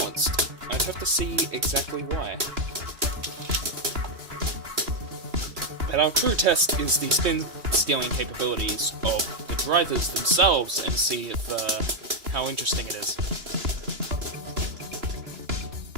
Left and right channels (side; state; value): left; late; 3.2 ms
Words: I'd have to see exactly why. But our true test is the spin scaling capabilities of the drivers themselves and see if how interesting it is.